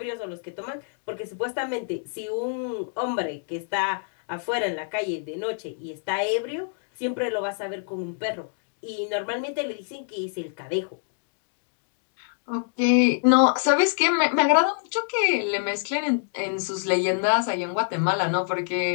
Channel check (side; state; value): right; silent; digital silence